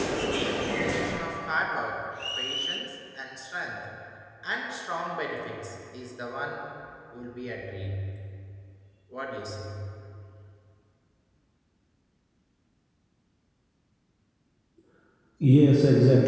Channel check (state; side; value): identical; both; correlation 1.00